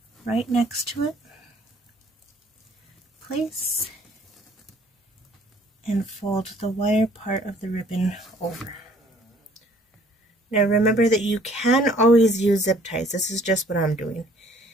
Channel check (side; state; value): both; normal; correlation 0.58